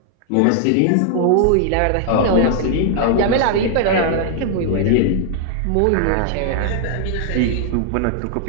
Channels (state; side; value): different; both; correlation 0.00